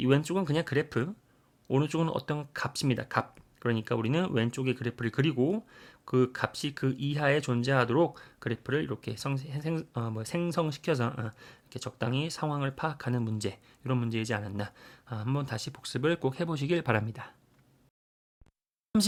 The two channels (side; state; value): both; identical; correlation 1.00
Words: 왼쪽은 그냥 그래프, 오른쪽은 어떤 값입니다. 값. 그러니까 우리는 왼쪽에 그래프를 그리고 그 값이 그 이하에 존재하도록 그래프를 이렇게 생성시켜서 이렇게 적당히 상황을 파악하는 문제, 이런 문제이지 않았나. 한번 다시 복습을 꼭 해보시길 바랍니다.